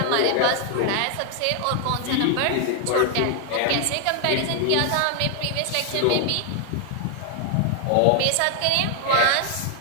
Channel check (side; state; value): both; different; correlation 0.00